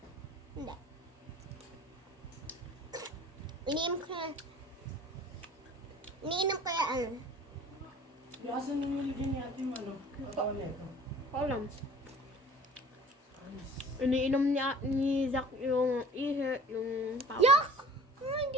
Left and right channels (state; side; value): normal; both; correlation 0.47